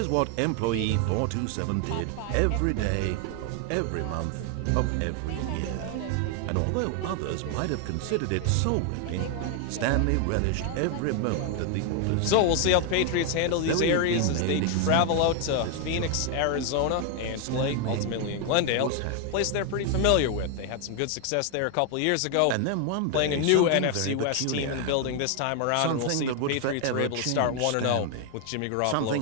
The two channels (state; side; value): different; both; correlation 0.01